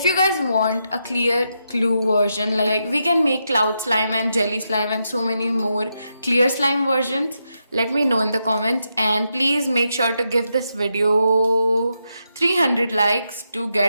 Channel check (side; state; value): both; inverted; correlation -0.84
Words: you guys want a clear glue version, like we can make cloud slime and jelly slime and so many more clear slime versions, let me know in the comments. And please make sure to give this video 300 likes to